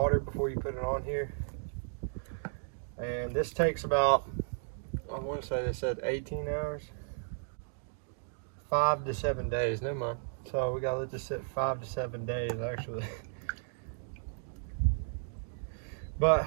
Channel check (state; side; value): silent; left; digital silence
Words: before you put it on here. And this takes about, I want to say they said 18 hours. 5 to 7 days, never mind. So we gotta let this sit 5 to 7 days actually. But